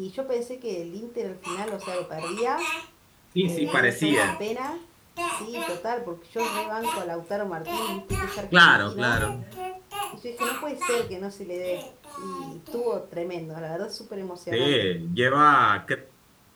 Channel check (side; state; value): both; identical; correlation 1.00